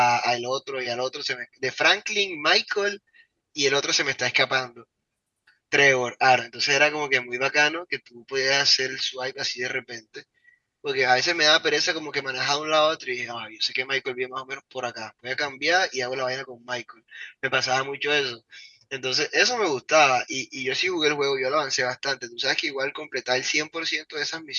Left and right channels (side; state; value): both; identical; correlation 1.00